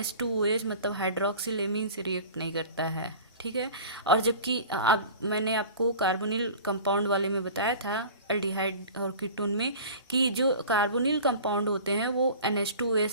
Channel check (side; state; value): both; inverted; correlation -0.39